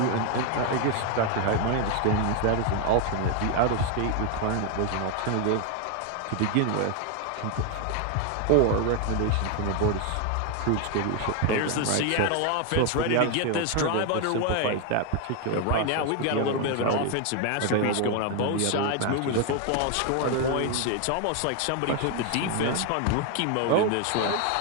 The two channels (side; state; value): both; different; correlation 0.01